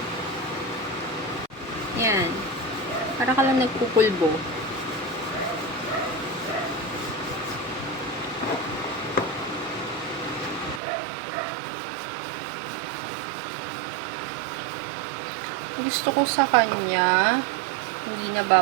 Yan. Para ka lang nagpupulbo. Ibig gusto ko sa kanya, hindi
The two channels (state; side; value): drops out; left; at 10.8 s